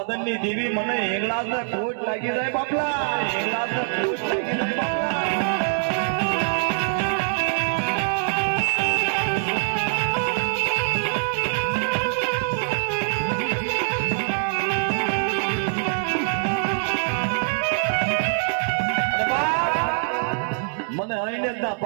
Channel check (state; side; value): silent; left; digital silence